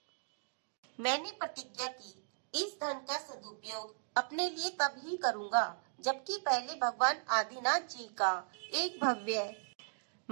मैंने प्रतिज्ञा की, इस धन का सदुपयोग अपने लिए तब ही करूंगा जबकि पहले भगवान आदिनाथ जी का एक भव्य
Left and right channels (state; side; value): silent; left; digital silence